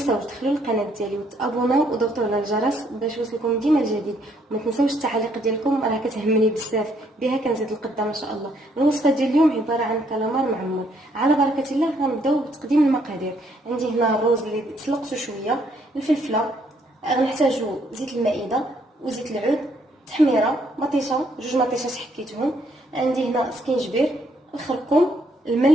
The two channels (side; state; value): both; normal; correlation 0.69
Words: تدخلوا للقناة ديالي وتابوناو وضغطوا على الجرس باش يوصلكم ديما الجديد. وما تنساوش التعاليق ديالكم، راه كتهمني بزاف، بها كنزيد القدام ان شاء الله. الوصفة ديال اليوم عبارة عن كالامار معمر. على بركة الله غنبداو بتقديم المقادير. عندي هنا الروز اللي تسلقته شويه، الفلفله، غنحتاجو زيت المائده وزيت العود، تحميره، مطيشه، جوج مطيشات حكيتهم. عندي هنا سكينجبير، الخرقوم،